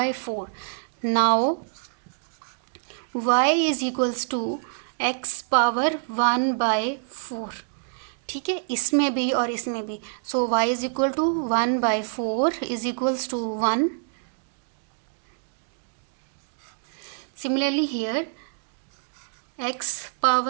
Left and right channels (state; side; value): silent; left; digital silence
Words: Now y = x⁴। ठीक है, इसमें भी और इसमें भी, सो y = 1/4 = 1। Similarly here x⁴ =